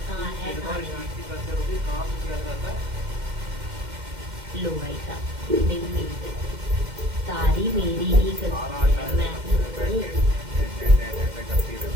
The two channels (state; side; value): late; left; 2.1 ms